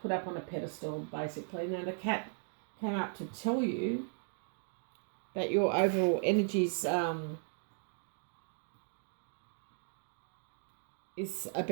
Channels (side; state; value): left; silent; 53 dB below the other